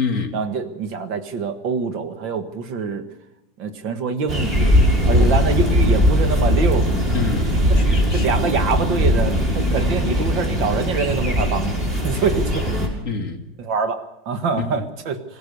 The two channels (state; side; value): normal; both; correlation 0.38